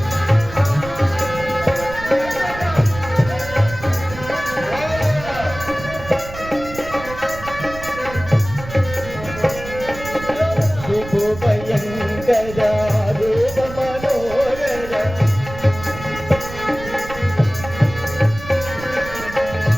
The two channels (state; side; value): noise; right; rumble, 13 dB below the sound